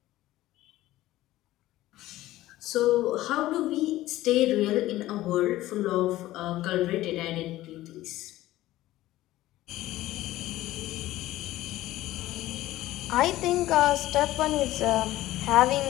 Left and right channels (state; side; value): quieter; right; 15.9 dB